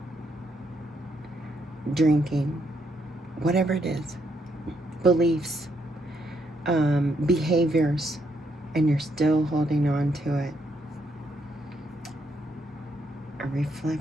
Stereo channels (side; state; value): both; normal; correlation 0.75